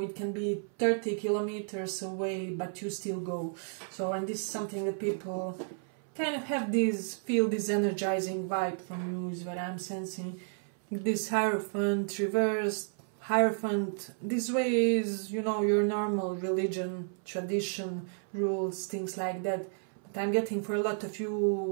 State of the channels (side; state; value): left; silent; 56 dB below the other